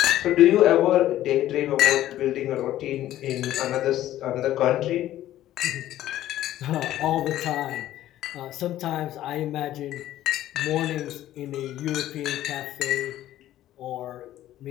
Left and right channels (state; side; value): quieter; right; 13.5 dB